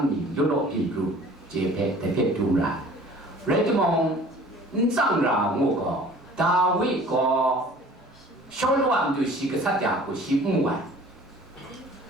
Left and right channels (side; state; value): both; normal; correlation 0.48